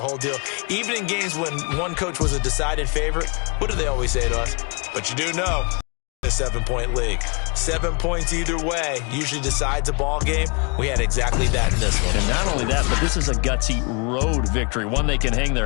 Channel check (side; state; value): right; quieter; 32.8 dB